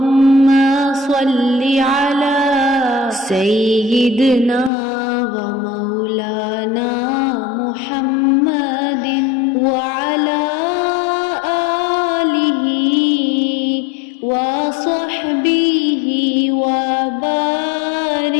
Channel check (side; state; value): right; drops out; at 4.7 s